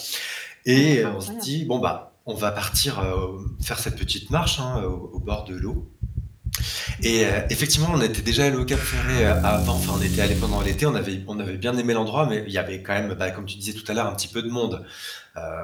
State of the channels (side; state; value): both; identical; correlation 1.00